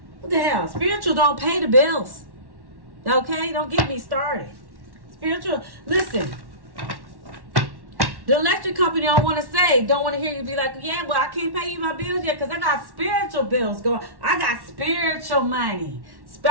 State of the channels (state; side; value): late; left; 1.1 ms